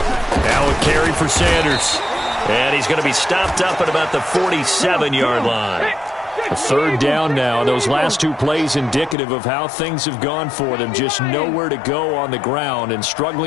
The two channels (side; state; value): right; drops out; at 9.2 s